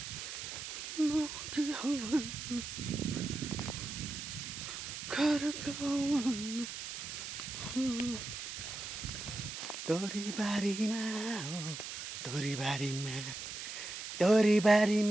तोरीबारीमा हो तोरीबारीमा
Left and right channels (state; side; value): noise; right; hiss, 7 dB below the sound